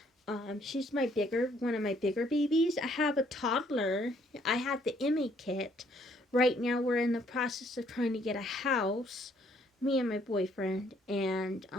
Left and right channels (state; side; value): normal; both; correlation 0.66